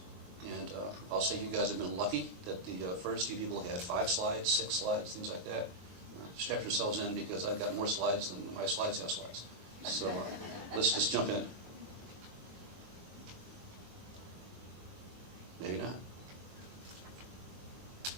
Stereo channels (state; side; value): late; left; 22 ms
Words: And I'll say you guys have been lucky that the first few people had 5 slides, 6 slides, things like that. Strap yourselves in, because I've got more slides than my slides have slides. So let's just jump in. Maybe not.